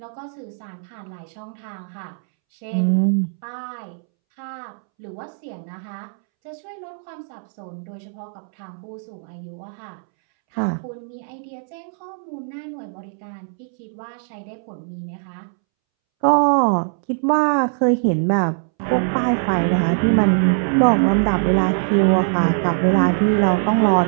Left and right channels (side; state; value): left; silent; 64 dB below the other